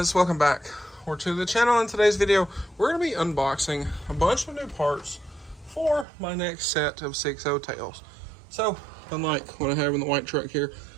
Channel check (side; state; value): left; drops out; at 6.1 s